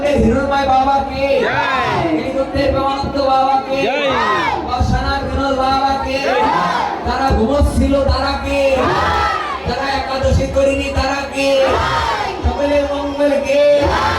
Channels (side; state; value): both; identical; correlation 1.00